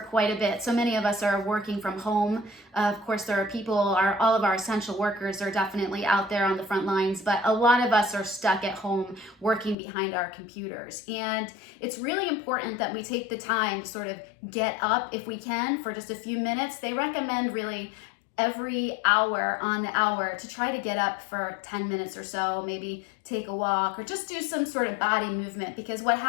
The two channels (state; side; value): drops out; right; at 9.8 s